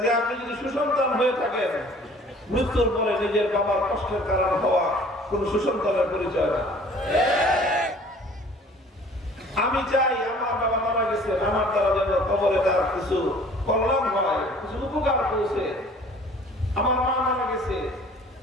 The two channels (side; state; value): both; normal; correlation 0.51